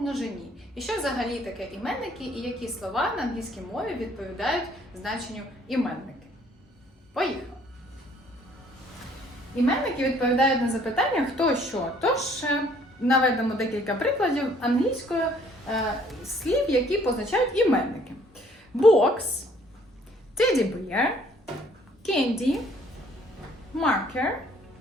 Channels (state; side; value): normal; both; correlation 0.61